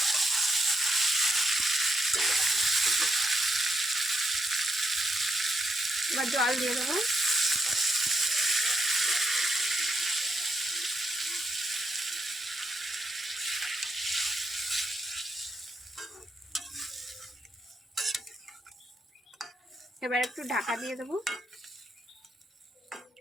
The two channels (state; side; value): normal; both; correlation 0.80